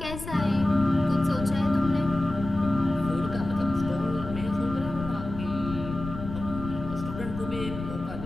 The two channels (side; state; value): left; noise; rumble, 9 dB below the sound